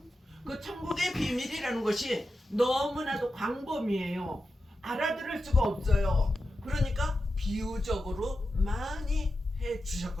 그 천국의 비밀이라는 것이 너무나도 광범위해요. 알아들을 수가 없어요. 그러니까 비유적으로 많이 해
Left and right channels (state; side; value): normal; both; correlation 0.90